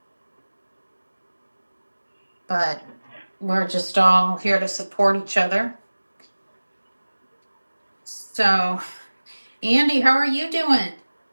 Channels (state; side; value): inverted; both; correlation -1.00